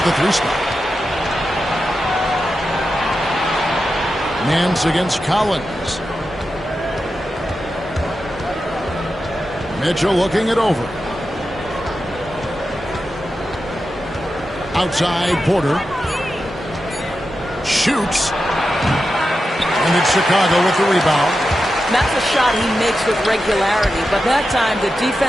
the 3 spot. Nance against Collins. Mitchell looking it over. Outside, Porter. Shoots. And it's Chicago with the rebound. That's a shot he makes with regularity, but that time the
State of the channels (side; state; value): both; normal; correlation 0.90